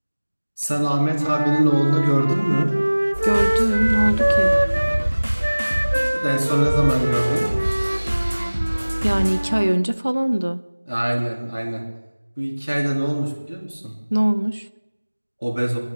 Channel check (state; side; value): inverted; both; correlation -1.00